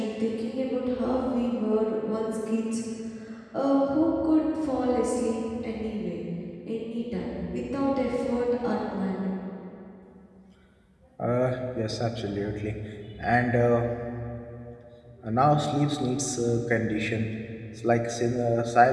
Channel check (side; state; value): both; identical; correlation 1.00